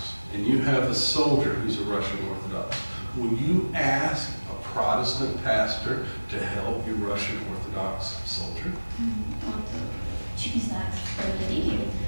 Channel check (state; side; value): inverted; both; correlation -1.00